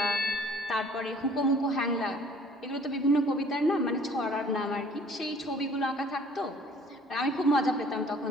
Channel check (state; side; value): normal; both; correlation 0.54